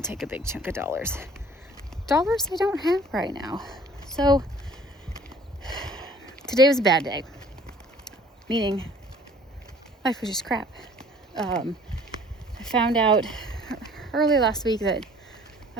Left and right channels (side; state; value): both; normal; correlation 0.53